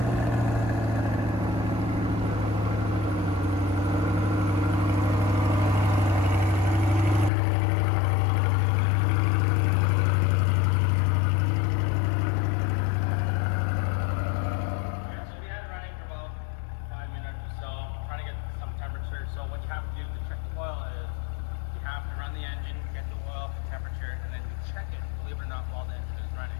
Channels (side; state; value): right; drops out; at 7.3 s